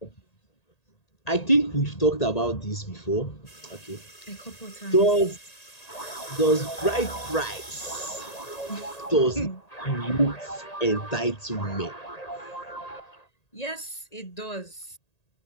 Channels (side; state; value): right; late; 1.8 ms